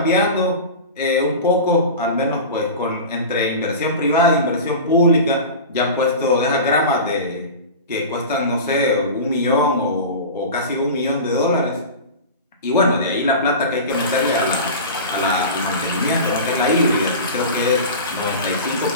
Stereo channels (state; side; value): inverted; both; correlation -0.31